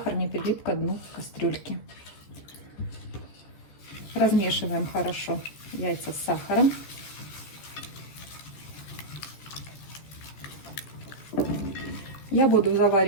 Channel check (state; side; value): late; right; 14 ms